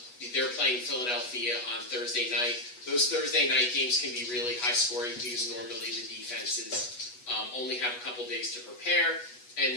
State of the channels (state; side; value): late; right; 8.2 ms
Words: They're playing Philadelphia on Thursday night. Those Thursday night games can be really high scoring because normally the defenses only have a couple days to prepare,